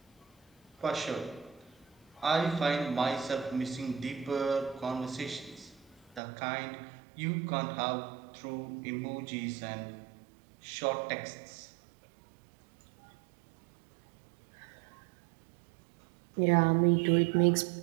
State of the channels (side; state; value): left; drops out; at 6.2 s